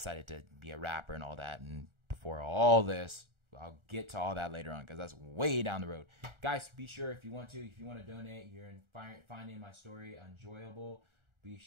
to be a rapper and all that. And before all this, I'll get to all that later on, because that's way down the road. Guys, be sure if you want to donate, you're finding my story enjoyable. Be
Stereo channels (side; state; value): left; late; 1.4 ms